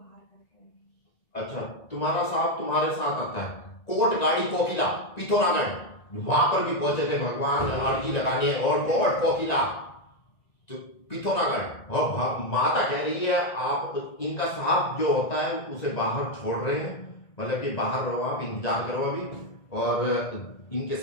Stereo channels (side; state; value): right; late; 1.9 ms